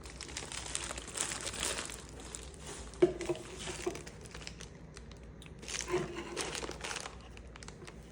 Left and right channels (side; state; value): both; identical; correlation 1.00